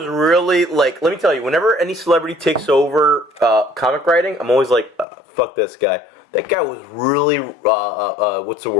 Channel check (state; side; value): drops out; right; at 5.1 s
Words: really like. Let me tell you. Whenever any celebrity takes over comic writing, I'm always like, "Fuck this guy." That guy was really. What's the